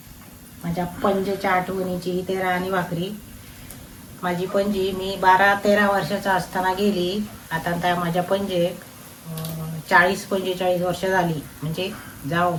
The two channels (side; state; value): both; identical; correlation 1.00